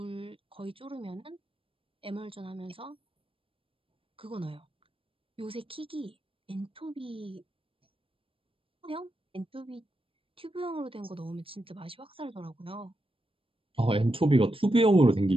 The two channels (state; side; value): late; left; 0.26 ms